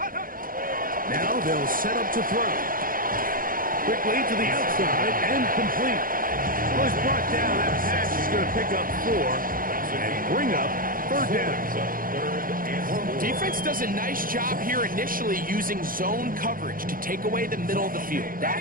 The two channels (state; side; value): late; left; 0.41 ms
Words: Now they'll set up to throw. Quickly to the outside and complete. Well, he's brought down. That pass is going to pick up 4 and bring up 3rd down. Defense does a nice job here initially using zone coverage to take away the middle of the field.